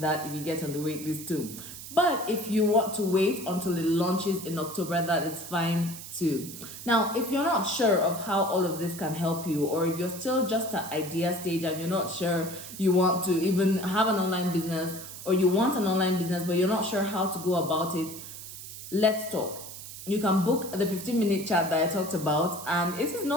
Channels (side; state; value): right; noise; hiss, 12 dB below the sound